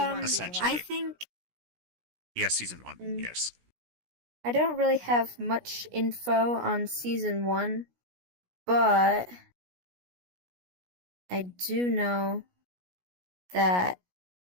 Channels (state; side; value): late; left; 17 ms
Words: Essentially. I think Yes, season 1. Mm. Yes. I don't really have much info on season 1, but I do know that